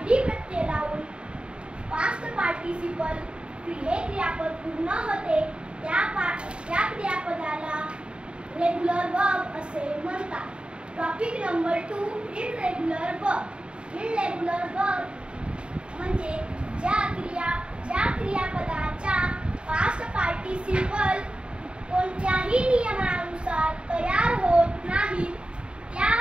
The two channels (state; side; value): late; left; 0.054 ms